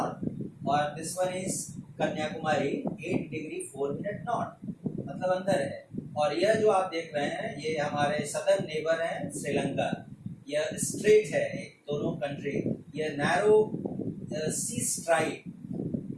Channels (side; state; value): both; identical; correlation 1.00